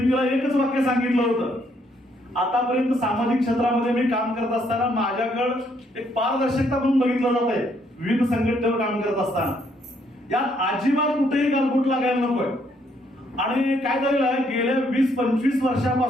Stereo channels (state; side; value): normal; both; correlation 0.70